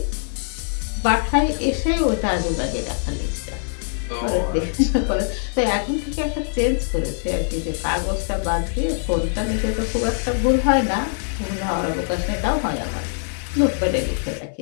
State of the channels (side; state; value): right; silent; 57 dB below the other